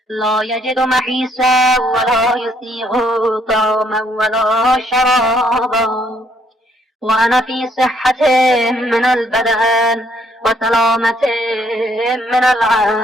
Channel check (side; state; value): both; normal; correlation 0.68